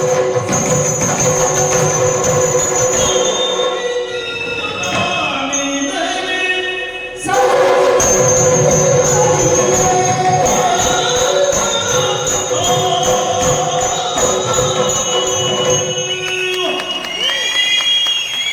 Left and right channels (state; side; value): identical; both; correlation 1.00